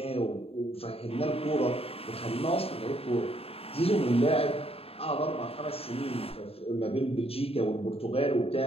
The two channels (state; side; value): late; right; 0.28 ms